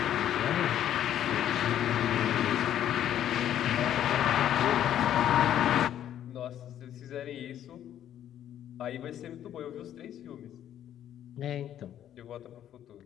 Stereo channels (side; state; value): right; quieter; 10.9 dB